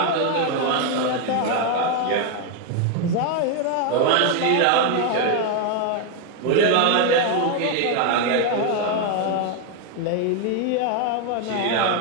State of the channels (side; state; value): both; different; correlation 0.01